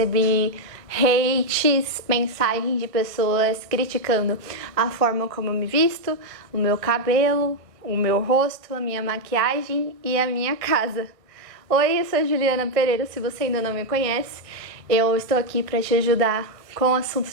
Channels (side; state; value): left; late; 1.5 ms